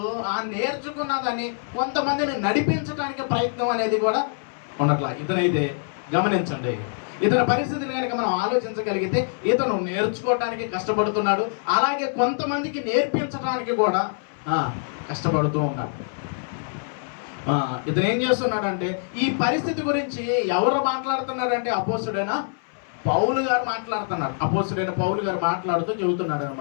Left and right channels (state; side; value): silent; right; 62 dB below the other